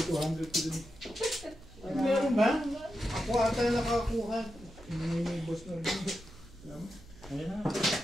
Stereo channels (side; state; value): right; noise; hum, 21 dB below the sound